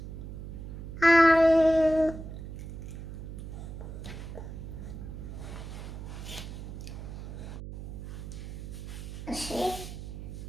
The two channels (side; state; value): right; noise; hum, 9 dB below the sound